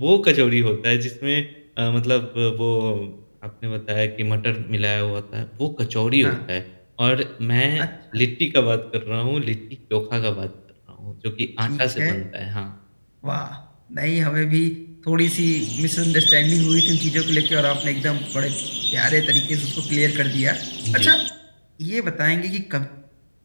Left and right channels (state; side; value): inverted; both; correlation -1.00